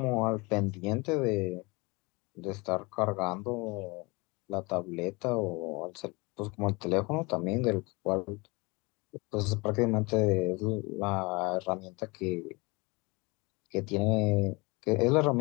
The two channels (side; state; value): right; quieter; 26.4 dB